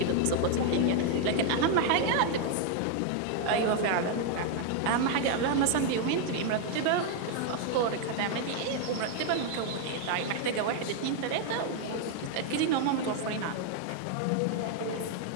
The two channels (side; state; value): both; different; correlation 0.00